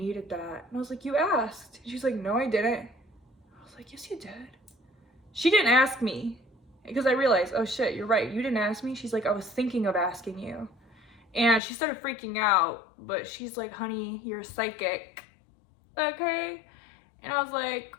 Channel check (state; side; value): drops out; right; at 11.6 s